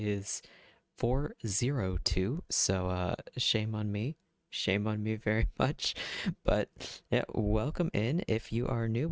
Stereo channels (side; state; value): both; identical; correlation 1.00